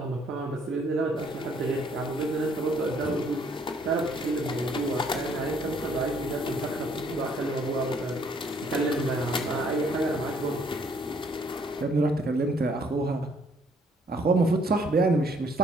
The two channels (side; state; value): both; normal; correlation 0.64